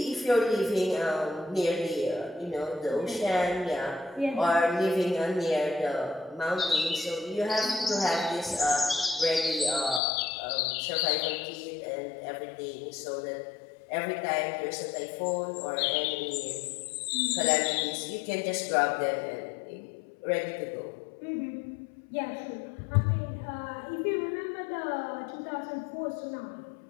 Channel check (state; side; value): drops out; right; at 10.0 s